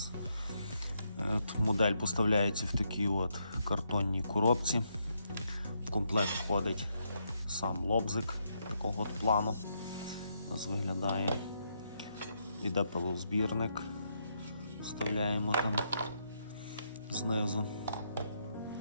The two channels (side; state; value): both; inverted; correlation -0.78